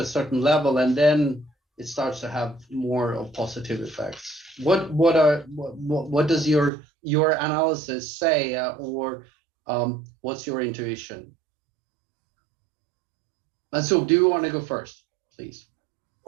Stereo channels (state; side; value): drops out; left; at 6.7 s